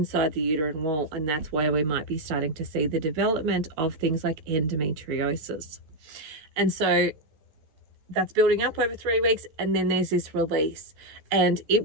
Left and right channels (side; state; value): left; late; 13 ms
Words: the uterine wall. And that's why we might be starting to see the development of things like endometriosis. And so that's building up over 3 weeks, and then there's this release, and it